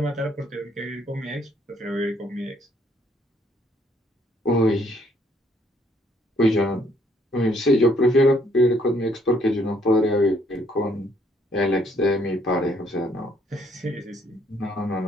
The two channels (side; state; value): both; normal; correlation 0.67